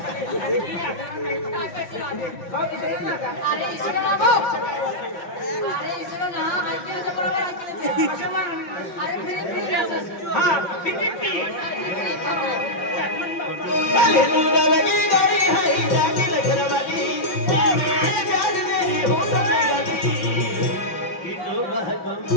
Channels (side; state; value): right; late; 5.7 ms